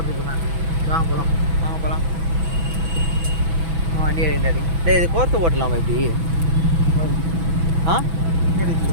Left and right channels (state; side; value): late; left; 6.1 ms